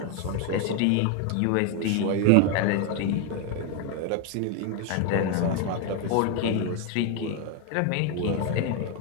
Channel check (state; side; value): different; both; correlation 0.01